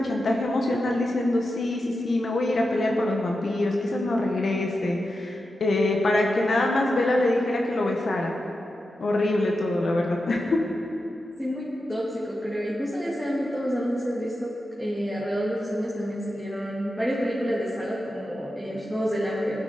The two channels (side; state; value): both; normal; correlation 0.90